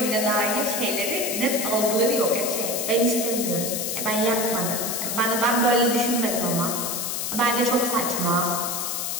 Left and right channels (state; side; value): noise; left; hiss, 2 dB below the sound